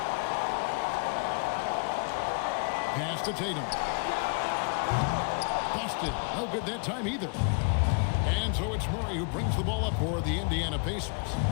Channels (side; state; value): right; quieter; 37.7 dB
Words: Pass to Tatum. Boston, no good that time either. And so it's Murray who brings the ball up for the Indiana Pacers.